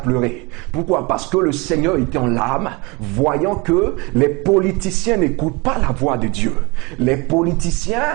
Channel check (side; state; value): left; quieter; 26.9 dB